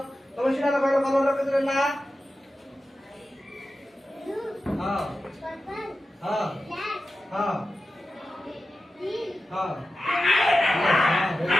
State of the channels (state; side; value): normal; both; correlation 0.93